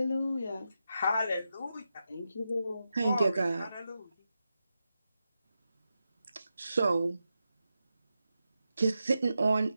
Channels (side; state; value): both; inverted; correlation -0.89